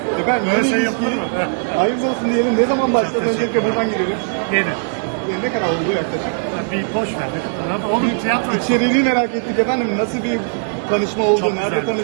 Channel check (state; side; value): silent; left; digital silence